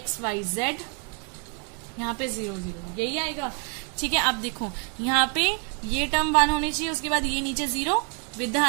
y, z, यहाँ पे 0, 0, यही आएगा। ठीक है, अब देखो यहाँ पे ये टर्म 1 होनी चाहिए, उसके बाद ये नीचे 0 विद द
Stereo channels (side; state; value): left; quieter; 37.1 dB